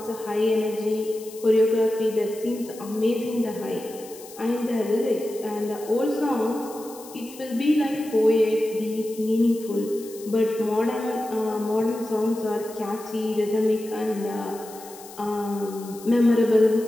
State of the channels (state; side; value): noise; left; hiss, 18 dB below the sound